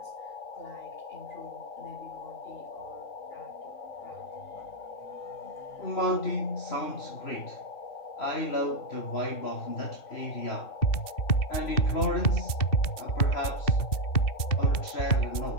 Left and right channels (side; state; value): right; late; 2.7 ms